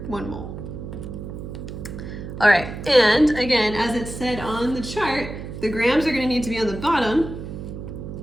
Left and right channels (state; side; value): noise; right; hum, 9 dB below the sound